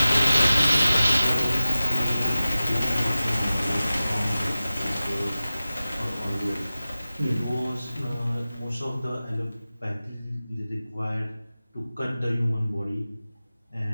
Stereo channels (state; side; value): inverted; both; correlation -0.96